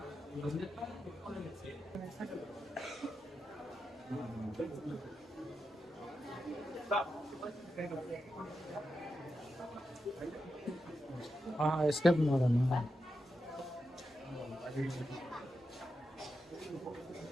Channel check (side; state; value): both; normal; correlation 0.88